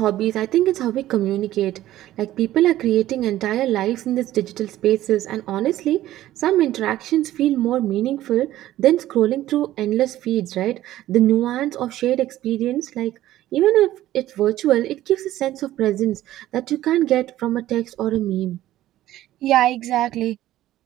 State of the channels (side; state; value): left; quieter; 14.3 dB